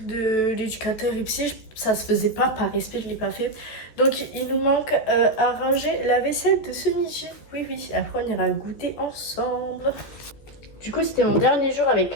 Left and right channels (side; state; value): right; late; 14 ms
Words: de l'éducateur et psy, ça se faisait pas par respect, je l'ai pas fait. Donc il nous manque à ranger la vaisselle de ce midi. Oui, oui, après on ira goûter ensemble. Du coup, c'était mon dernier jour avec